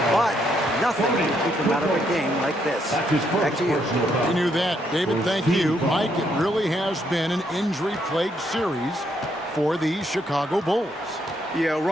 but nothing can keep him out of a game like this. Back to you. We knew that. David, thank you. Mike, it really has been an injury-plagued series for the Chicago Bulls. Yeah,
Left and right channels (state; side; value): normal; both; correlation 0.74